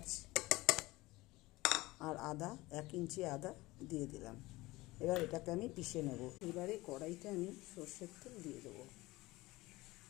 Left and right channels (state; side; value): quieter; right; 20.1 dB